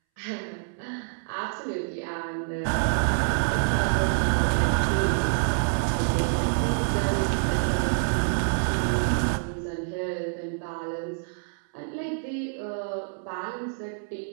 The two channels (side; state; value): left; silent; 60 dB below the other